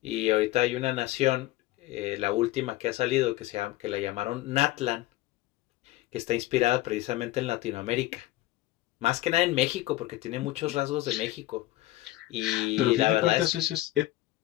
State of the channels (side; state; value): right; quieter; 16.9 dB